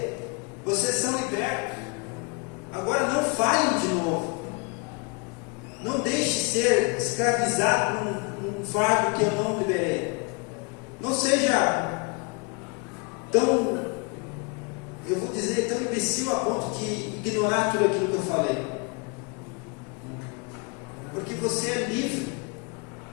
vocês são libertos. Agora não falhem de novo. Não deixe ser escravizado por um fardo que eu não liberei. Não seja tão, eu vou dizer, tão imbecil a ponto de ignorar tudo aquilo que eu falei. Porque você é livre.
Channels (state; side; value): quieter; right; 31.9 dB